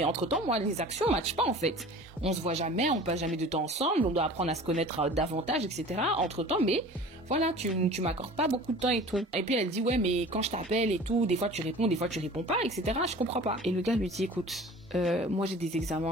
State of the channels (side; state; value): both; normal; correlation 0.42